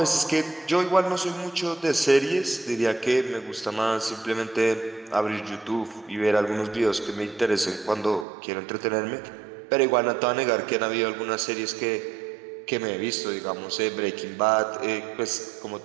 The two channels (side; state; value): left; drops out; at 8.2 s